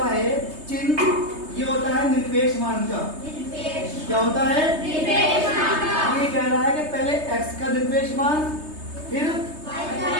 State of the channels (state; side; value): late; left; 3.2 ms